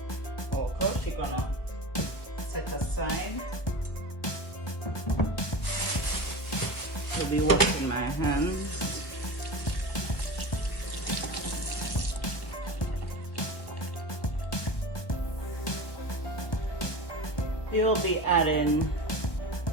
All crushed. You're gonna set aside. I'll be washing my hands. We'll be adding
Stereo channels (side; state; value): right; late; 1.4 ms